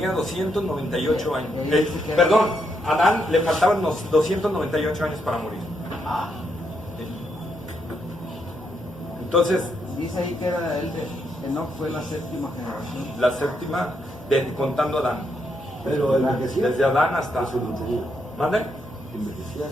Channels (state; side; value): normal; both; correlation 0.78